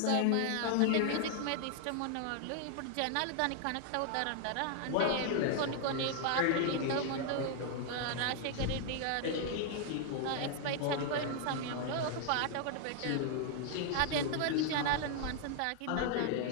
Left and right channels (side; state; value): both; different; correlation 0.00